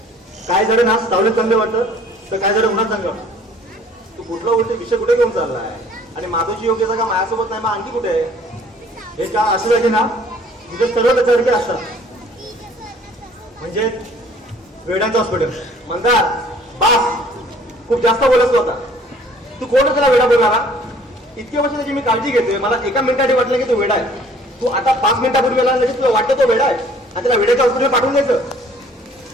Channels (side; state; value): both; normal; correlation 0.55